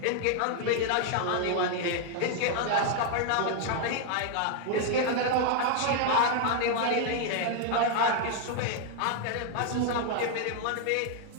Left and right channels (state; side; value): different; both; correlation 0.00